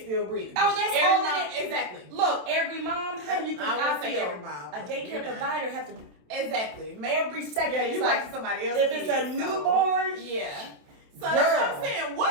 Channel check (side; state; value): left; late; 27 ms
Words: still breathing. Oh, that's every all mom. Exactly. Look, every mom. How you think I would say feel? every mom. A daycare provider have to exactly every second. Yeah, you watching somebody else. If it's a newborn, yeah. So that's what I'm saying.